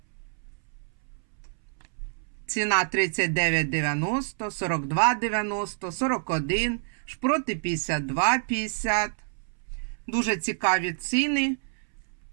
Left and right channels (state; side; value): silent; left; 60 dB below the other